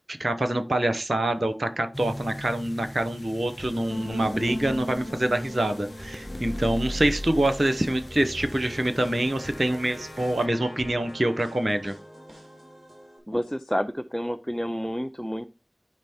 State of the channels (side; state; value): both; normal; correlation 0.96